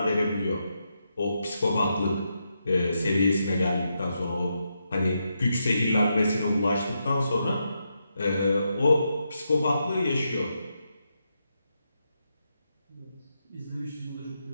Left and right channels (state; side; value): inverted; both; correlation -0.83